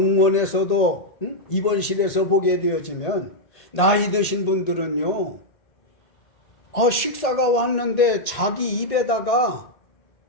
입원실에서 보게 되어지면 나이 드신 분들은요. 식사가 왔는데 자기 입에다가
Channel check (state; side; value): late; right; 1.8 ms